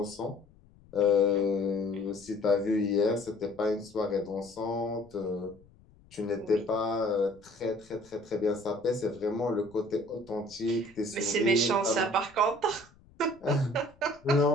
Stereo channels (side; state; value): left; noise; rumble, 28 dB below the sound